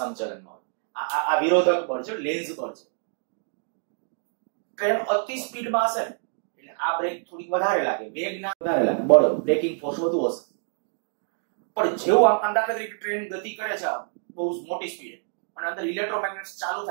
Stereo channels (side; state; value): left; silent; digital silence